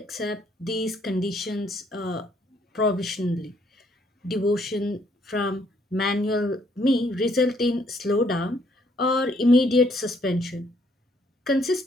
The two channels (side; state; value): both; normal; correlation 0.68